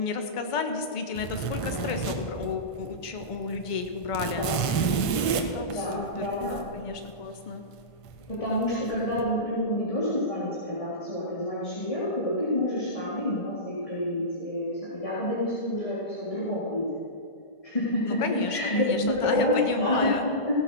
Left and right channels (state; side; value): late; right; 1.5 ms